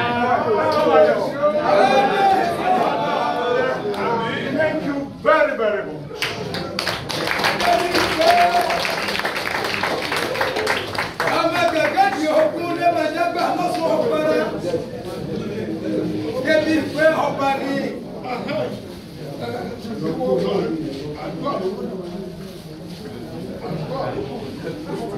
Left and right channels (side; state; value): both; identical; correlation 1.00